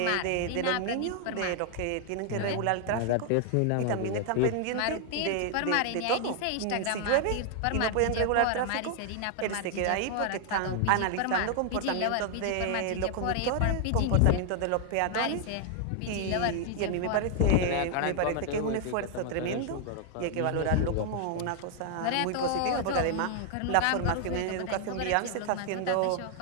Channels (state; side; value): different; both; correlation 0.00